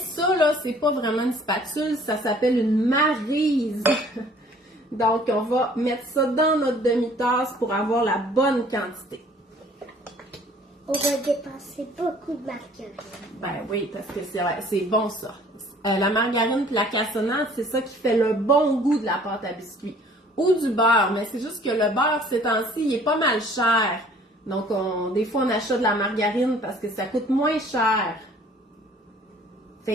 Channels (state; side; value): normal; both; correlation 0.54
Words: là, c'est pas vraiment une spatule, ça s'appelle une maryse. Donc, on va mettre ça dans notre demi-tasse pour avoir la bonne quantité. On va dépenser beaucoup de margarine. Ben oui, parce que c'est bon ça. La margarine et la cassonade, c'est ça qui fait le bon goût de la pâte à biscuits. Ou du beurre, mais c'est juste que le beurre, ces temps-ci, il est pas mal cher. Donc, des fois, on achète de la margarine parce que ça coûte moins cher.